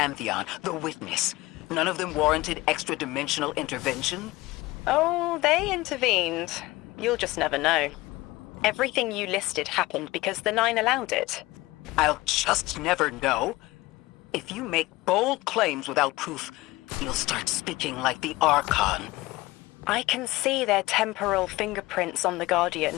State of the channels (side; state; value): right; quieter; 19.7 dB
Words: the Witness. None of them warranted extra-dimensional intervention? Oh, they intervened. You'll just never know. Everything you listed happened because the Nine allowed it. I'll just never know. If you make bold claims without proof, you'll start speaking like the Archon. I can see their temporal fingerprints on the Guardian.